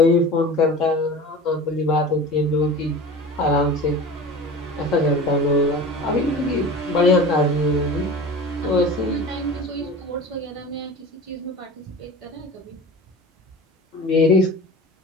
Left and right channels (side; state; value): both; normal; correlation 0.35